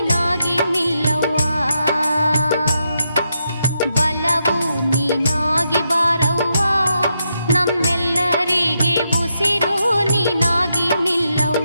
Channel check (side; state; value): both; inverted; correlation -0.82